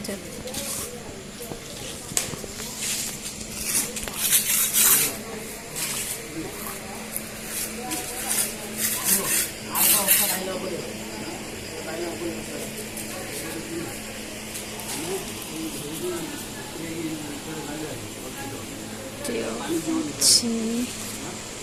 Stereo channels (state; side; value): identical; both; correlation 1.00